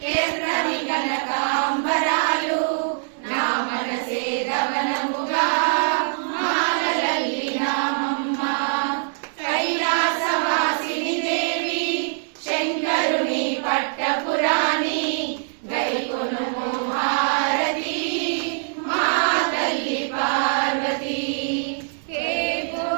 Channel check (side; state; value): left; silent; digital silence